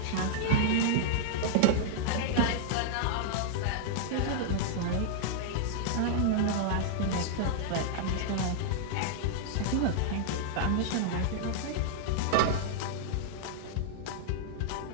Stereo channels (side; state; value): both; different; correlation -0.01